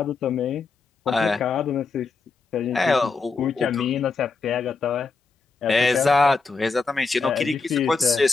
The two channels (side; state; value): right; quieter; 4.4 dB